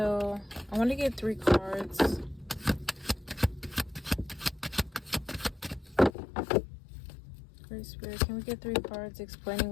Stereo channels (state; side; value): drops out; right; at 6.1 s